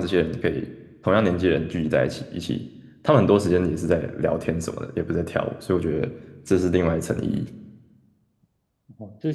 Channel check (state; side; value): identical; both; correlation 1.00